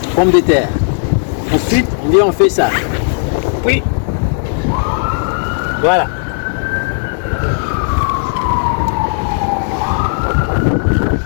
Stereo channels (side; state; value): right; silent; digital silence